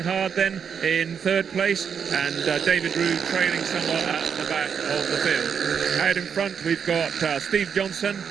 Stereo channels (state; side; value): quieter; left; 7.1 dB